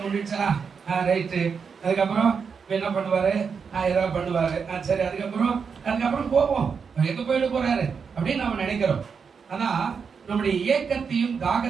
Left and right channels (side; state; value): left; quieter; 6.0 dB